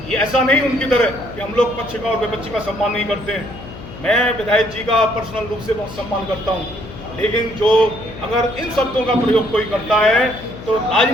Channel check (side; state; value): left; noise; hum, 14 dB below the sound